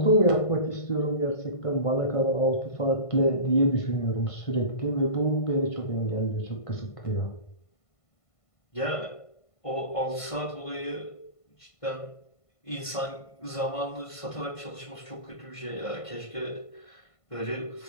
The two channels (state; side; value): late; right; 1.5 ms